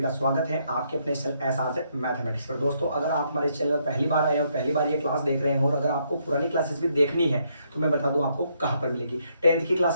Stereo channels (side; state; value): both; inverted; correlation -0.74